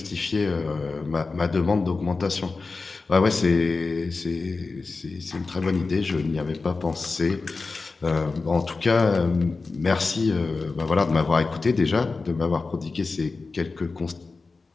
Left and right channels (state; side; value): quieter; right; 4.0 dB